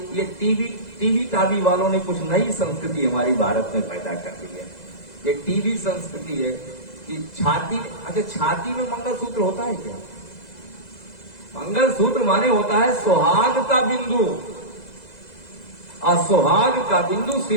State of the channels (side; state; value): right; late; 2.0 ms